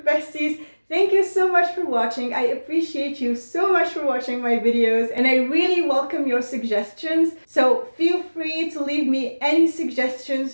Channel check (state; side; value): inverted; both; correlation -1.00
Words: besties. Thank you so much for watching. I appreciate you so much for watching my videos, and I really welcome your suggestions. So feel free to leave me any